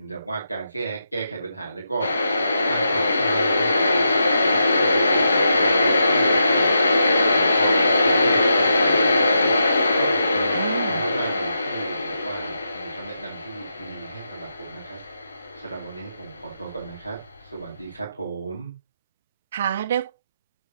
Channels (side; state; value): both; inverted; correlation -0.84